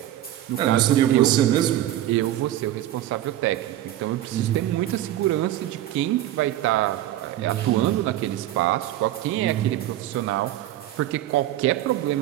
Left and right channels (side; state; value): left; quieter; 13.5 dB